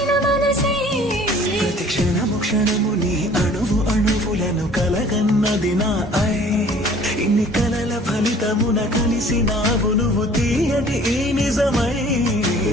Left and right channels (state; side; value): normal; both; correlation 0.51